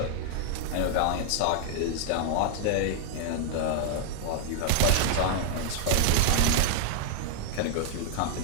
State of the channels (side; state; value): both; different; correlation 0.00